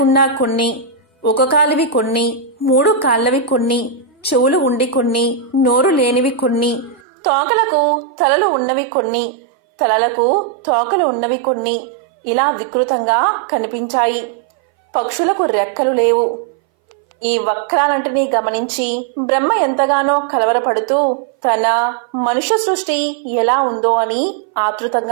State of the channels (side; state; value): left; drops out; at 7.0 s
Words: కొన్ని, ఒక కాలివి కొన్ని, 3 కాళ్ళవి కొన్ని, చెవులు ఉండి కొన్ని, నోరు లేనివి కొన్ని, తోకలకు తలలు ఉన్నవి కొన్ని, తలలకు తోకలు ఉన్నవి కొన్ని, ఇలా వికృతంగా కనిపించాయి. పక్షులకు రెక్కలు లేవు. ఈ వక్రాలంటినీ గమనించి బ్రహ్మ ఎంతగానో కలవరపడుతూ తన మనుష్య సృష్టి ఎలా ఉందో అని